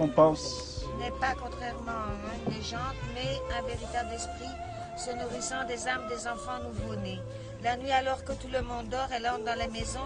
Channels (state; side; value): identical; both; correlation 1.00